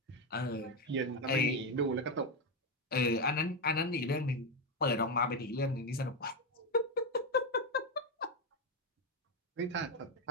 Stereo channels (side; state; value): both; normal; correlation 0.08